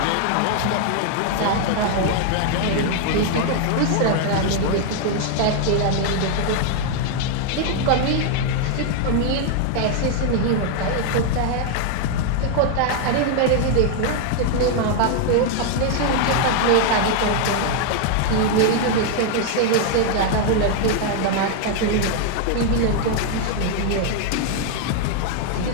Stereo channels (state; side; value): different; both; correlation 0.00